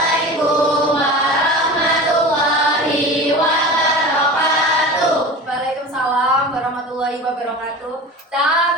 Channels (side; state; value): both; normal; correlation 0.33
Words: warahmatullahi wabarakatuh. Waalaikumsalam warahmatullahi wabarakatuh.